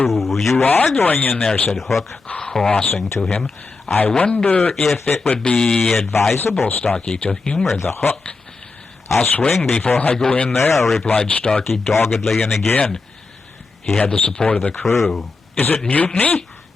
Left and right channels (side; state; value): right; quieter; 4.0 dB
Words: You are going in there," said Hook, crossing to him. "I wonder if it would be advisable, Starkey, to humor the Hook." "I'll swing before I go in there," replied Starkey doggedly, and again he had the support of the crew. "Is it mutiny?"